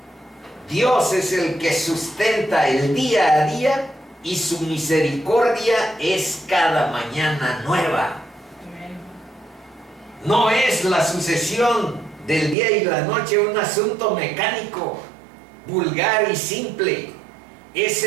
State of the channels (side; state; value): left; drops out; at 12.6 s